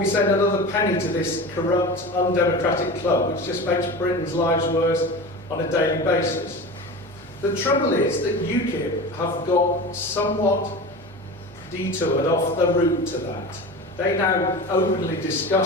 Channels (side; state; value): both; normal; correlation 0.31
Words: send another penny to this corrupt, undemocratic club, which just makes Britain's lives worse on a daily basis. The trouble is that UKIP have got somewhat detoured off the route to that. They now openly